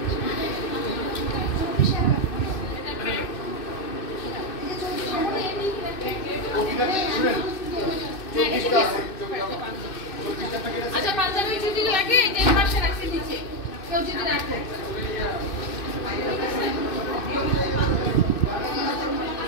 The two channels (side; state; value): right; late; 2.6 ms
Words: আচ্ছা পাঞ্জাবি যদি লাগে যে পাশে রাখছি নিচে কেউ যদি রাখে।